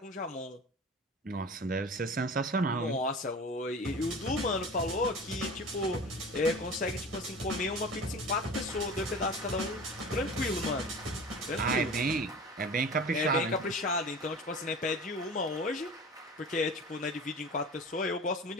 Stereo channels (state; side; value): normal; both; correlation 0.37